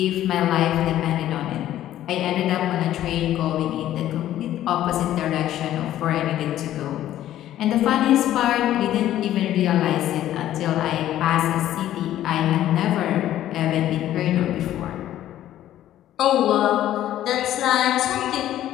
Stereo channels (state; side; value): quieter; right; 12.7 dB